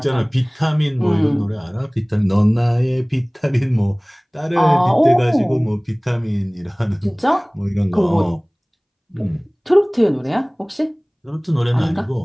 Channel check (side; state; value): both; identical; correlation 1.00